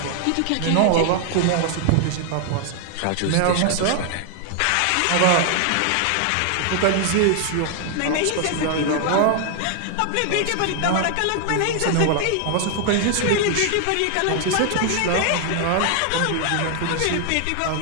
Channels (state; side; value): different; both; correlation 0.00